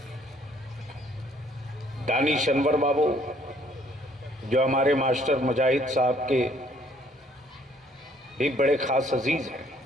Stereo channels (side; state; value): both; normal; correlation 0.62